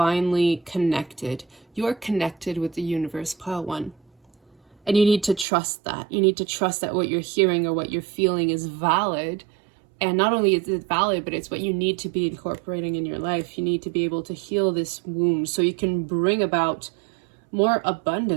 connected. You're connected with the universe, Pile 1. And you need to trust that. You need to trust that what you're hearing or what you're feeling is valid. And not only is it valid, but it's what you need to be incorporating in your life. You need to be able to heal this wound so you can bring about more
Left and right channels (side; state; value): left; drops out; at 5.5 s